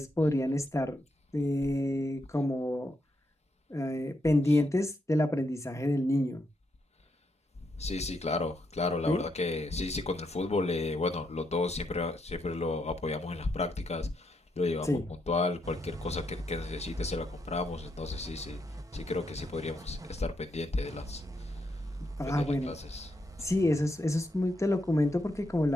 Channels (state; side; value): normal; both; correlation 0.80